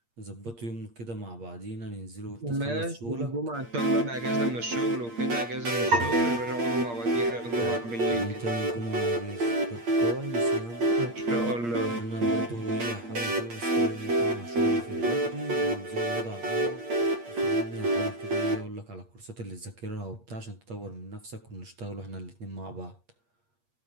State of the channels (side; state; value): left; late; 8.6 ms